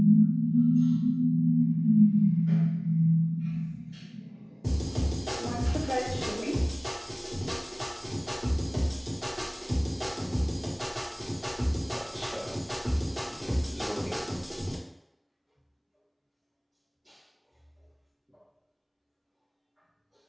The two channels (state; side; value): identical; both; correlation 1.00